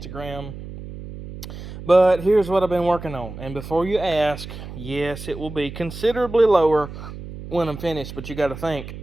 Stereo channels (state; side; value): noise; right; hum, 12 dB below the sound